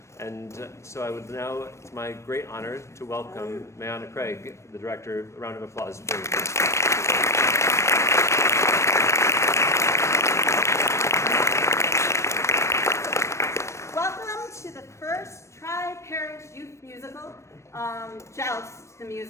And so I would now, it's my great honor to welcome Mayana Craig, the director. A round of applause, please. Welcome to the first Tri-Parish youth musical, Joust the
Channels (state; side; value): late; right; 0.14 ms